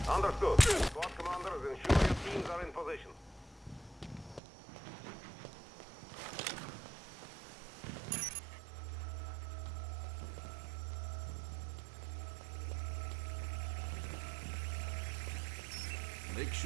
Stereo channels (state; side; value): drops out; left; at 4.4 s